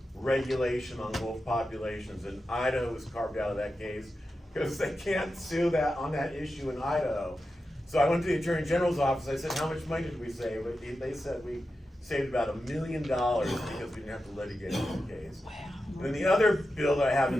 regulation on wolf populations, and Idaho was carved out of that case because they can't sue on that issue in Idaho. So I went to the Attorney General's office. I said, how much money did we save? They said we saved about $1 million because we didn't have to litigate the case. And then the other bill that I have in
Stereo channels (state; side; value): normal; both; correlation 0.91